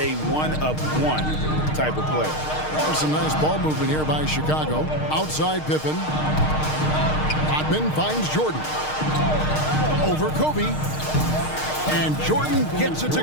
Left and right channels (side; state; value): right; late; 6.5 ms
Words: one-of-one type of player. There's some nice ball movement here by Chicago. Outside Pippen. Rodman finds Jordan. Over Kobe. And Jordan gets it to